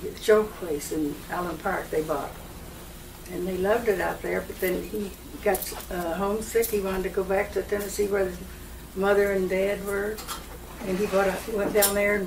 show place in Allen Park they bought, and they loved it out there. But then he got homesick. He wanted to go back to Tennessee where his mother and dad were, and he went down there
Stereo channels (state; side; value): identical; both; correlation 1.00